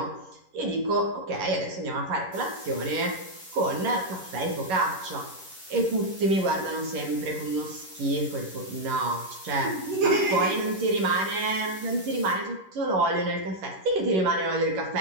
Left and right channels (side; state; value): left; late; 11 ms